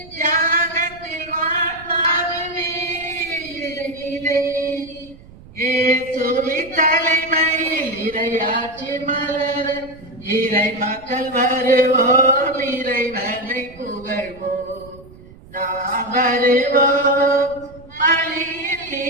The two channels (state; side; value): noise; right; rumble, 21 dB below the sound